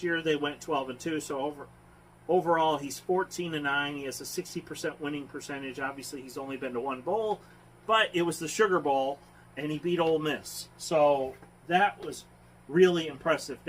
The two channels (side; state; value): both; identical; correlation 1.00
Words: year they went 12-2. So overall, he's 14-9. He has a 60% winning percentage. Obviously, he's only been to one bowl, but it was the Sugar Bowl, and he beat Ole Miss. So that was really impressive.